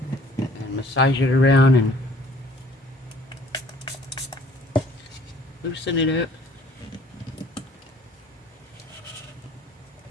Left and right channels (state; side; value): normal; both; correlation 0.55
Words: And massage it around and loosen it up.